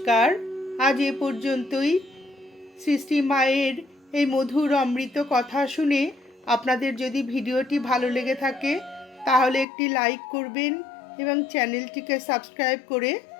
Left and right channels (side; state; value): right; drops out; at 9.7 s